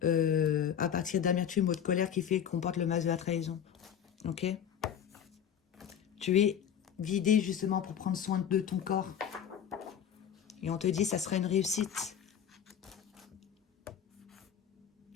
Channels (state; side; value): quieter; right; 8.8 dB